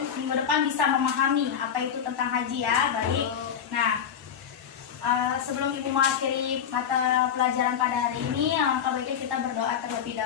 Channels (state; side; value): quieter; right; 8.2 dB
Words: minggu depan bisa memahami apa itu tentang haji ya. Baik. Nah, sebelum Ibu mengakhiri mata pelajaran pada hari ini, alangkah baiknya kita berdoa terlebih